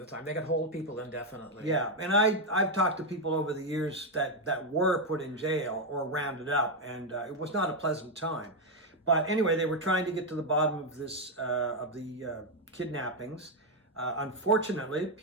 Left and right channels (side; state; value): both; normal; correlation 0.03